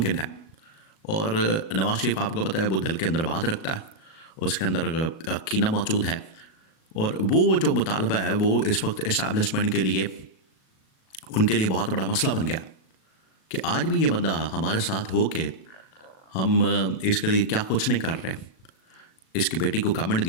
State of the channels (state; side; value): late; right; 37 ms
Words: है। और नवाज शरीफ आपको पता है वो दिल के अंदर बात रखता है, उसके अंदर कीना मौजूद है। और वो जो मुतालबा है वो इस वक्त इस्टेब्लिशमेंट के लिए, उनके लिए बहुत बड़ा मसला बन गया कि आज भी ये बंदा हमारे साथ हो के हम इसके लिए क्या कुछ नहीं कर रहे। इसकी बेटी को गवर्नमेंट